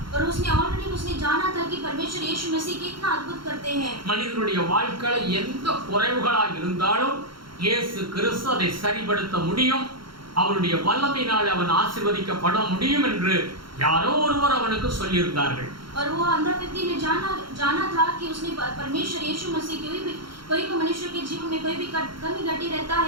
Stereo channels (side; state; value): left; late; 0.73 ms